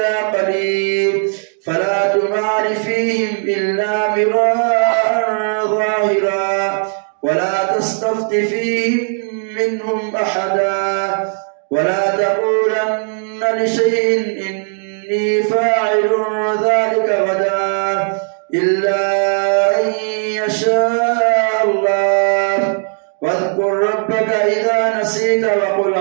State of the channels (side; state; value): left; silent; 63 dB below the other